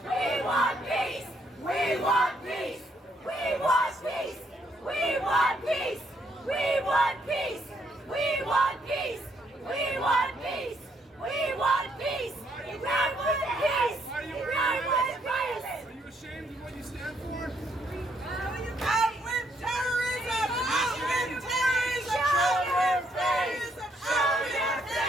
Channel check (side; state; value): both; normal; correlation 0.72